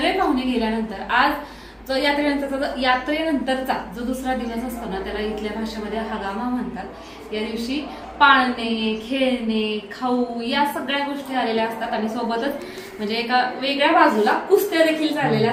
पाहुणे गेल्यानंतर आज जो यात्रेनंतरचा जो दुसरा दिवस असतो ना त्याला इथल्या भाषेमध्ये हगामा म्हणतात. या दिवशी पाळणे, खेळणे, खाऊ या सगळ्या गोष्टी आलेल्या असतात आणि सोबतच म्हणजे एका वेगळ्या बाजूला कुस्त्या देखील झालेल्या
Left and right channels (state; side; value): identical; both; correlation 1.00